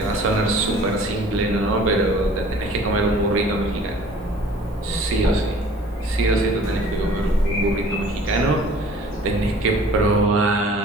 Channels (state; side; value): normal; both; correlation 0.50